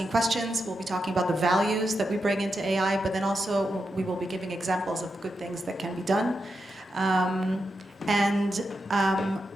questions, we'll be talking about the values that we bring into AI, but then also we will be giving examples of good things that can be done.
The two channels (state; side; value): normal; both; correlation 0.87